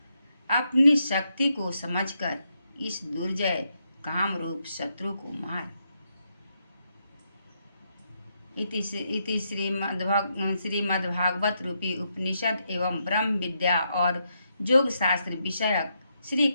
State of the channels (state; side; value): inverted; both; correlation -0.80